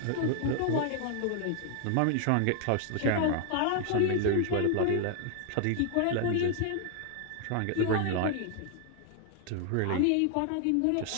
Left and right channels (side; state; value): both; different; correlation 0.00